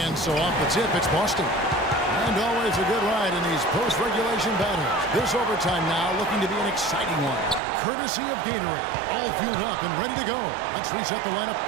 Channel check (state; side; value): drops out; left; at 7.6 s